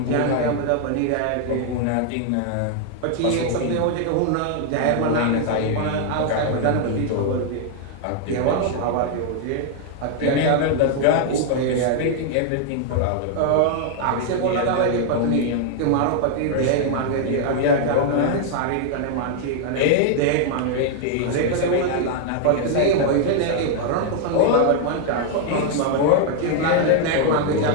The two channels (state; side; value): different; both; correlation 0.00